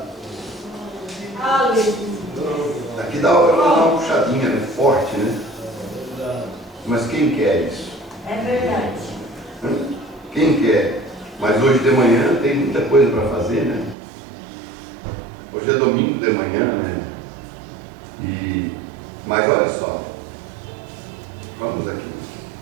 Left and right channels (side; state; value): left; drops out; at 14.0 s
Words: Aleluia. Aqui dá uma puxadinha, né? Forte, né? Mas quem quer isso? É verdade. Quem quer? Mas hoje de manhã tem muita coisa para fazer, né? Hoje é domingo de manhã, né? Mas olha só, vamos aqui.